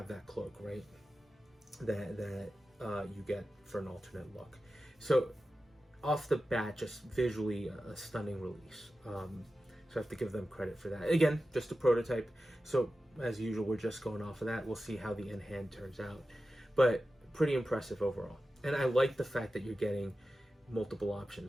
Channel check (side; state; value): both; normal; correlation 0.93